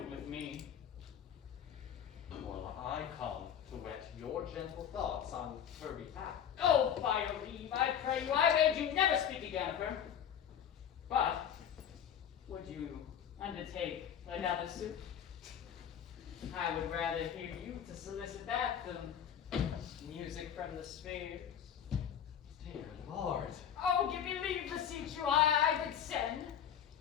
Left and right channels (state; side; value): quieter; right; 8.9 dB